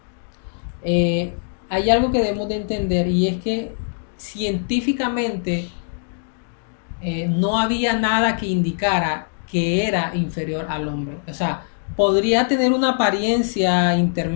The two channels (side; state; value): right; silent; digital silence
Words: hay algo que debemos de entender, y es que científicamente no había nada que indicara que era inferior al hombre. O sea, podría tener una apariencia